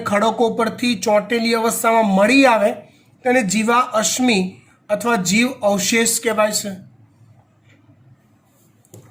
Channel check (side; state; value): both; identical; correlation 1.00